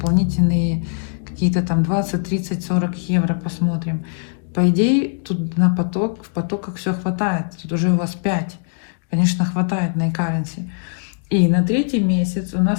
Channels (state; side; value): silent; right; digital silence